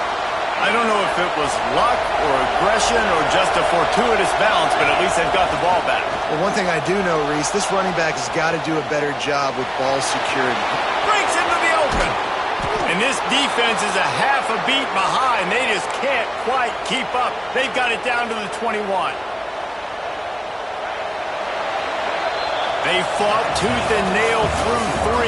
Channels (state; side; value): identical; both; correlation 1.00